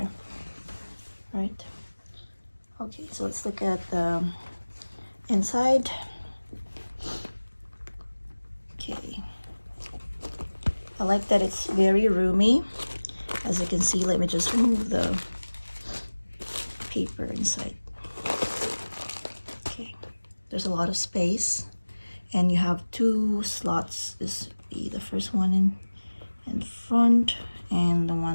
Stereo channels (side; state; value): both; inverted; correlation -1.00